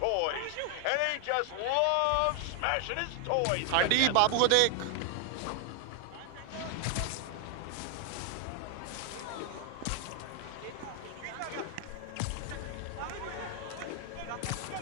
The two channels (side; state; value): both; different; correlation 0.00